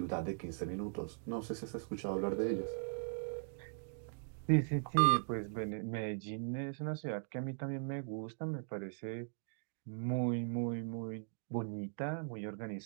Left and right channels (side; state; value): left; silent; digital silence